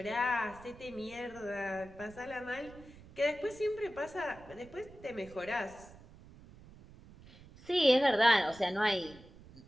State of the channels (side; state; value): right; noise; rumble, 21 dB below the sound